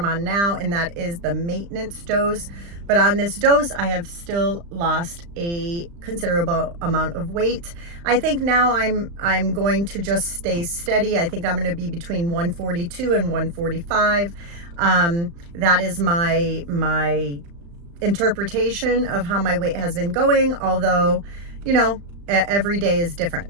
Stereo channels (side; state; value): left; late; 35 ms